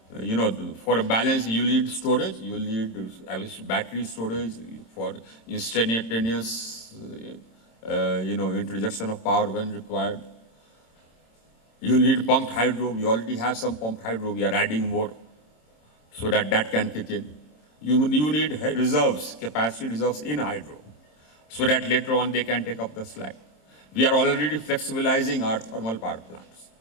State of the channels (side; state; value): right; late; 27 ms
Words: a balance, you need storage. You will need battery storage for instantaneous, introduction of power when required. You need pumped hydro. We already have some pumped hydro. We are adding more so that can kick in. You need reserves, capacity reserves in hydro, so that later on they can take up the slack. We are already flexibilizing our thermal power plants.